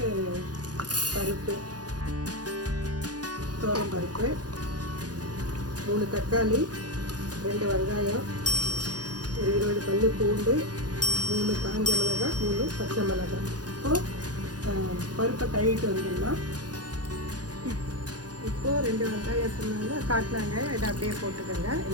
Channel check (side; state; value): left; late; 0.69 ms